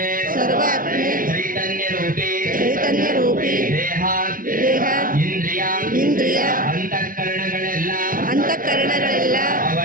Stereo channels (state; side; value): late; left; 0.40 ms